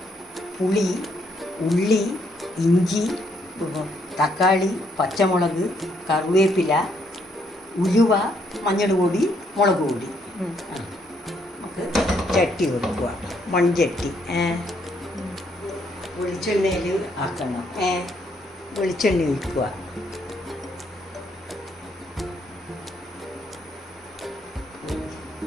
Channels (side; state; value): both; normal; correlation 0.72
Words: പുളി, ഉള്ളി, ഇഞ്ചി, തക്കാളി, പച്ചമുളക്, കറിവേപ്പില, ഉലുവ, മഞ്ഞൾ പൊടി, മുളക് പൊടി. നമുക്ക് ചട്ടി വെക്കുക, മൺചട്ടി. വെളിച്ചെണ്ണയിൽ ആക്കണം. വെളിച്ചെണ്ണ ഒഴിക്കുക.